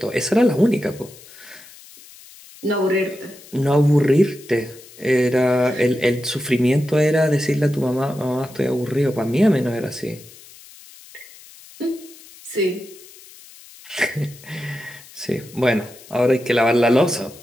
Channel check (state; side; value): noise; left; hiss, 21 dB below the sound